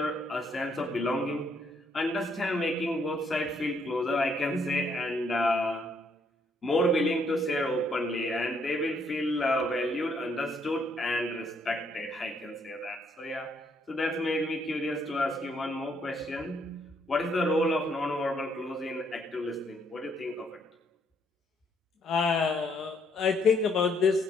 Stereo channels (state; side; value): normal; both; correlation 0.71